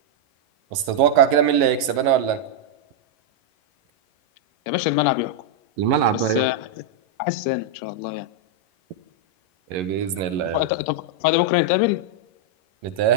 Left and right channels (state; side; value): late; left; 11 ms